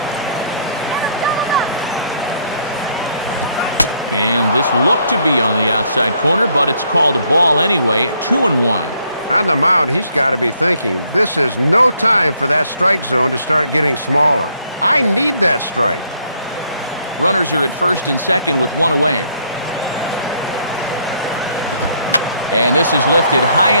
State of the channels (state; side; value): inverted; both; correlation -0.68